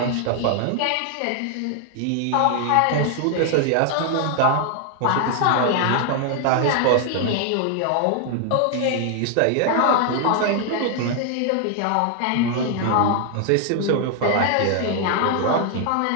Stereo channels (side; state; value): both; different; correlation 0.00